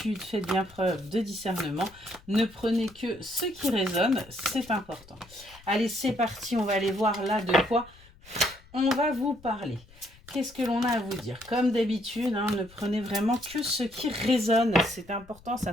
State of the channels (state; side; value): noise; left; rumble, 24 dB below the sound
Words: faites bien preuve de discernement. Ne prenez que ce qui résonne, c'est important. Allez, c'est parti, on va aller voir là de quoi on va vous parler. Qu'est-ce que l'on a à vous dire? Comme d'habitude, ne prenez vraiment que ce qui résonne. C'est important,